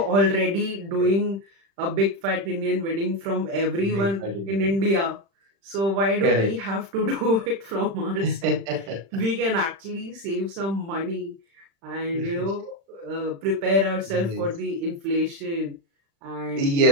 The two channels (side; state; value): left; late; 36 ms